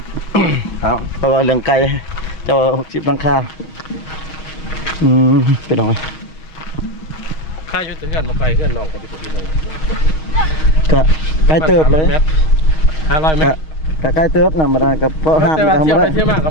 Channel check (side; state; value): right; late; 6.4 ms